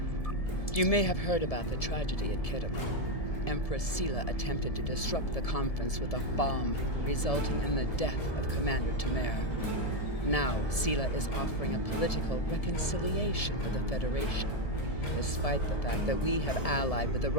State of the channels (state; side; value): late; right; 1.7 ms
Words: You may have heard about the tragedy at Khitomer. Empress Sela attempted to disrupt the conference with a bomb, resulting in the death of Commander Tamer. Now, Sela is offering a political reconciliation with the Federation, despite the fact that we have allied with the